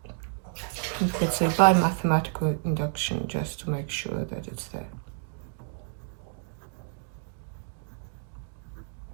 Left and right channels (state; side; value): silent; left; digital silence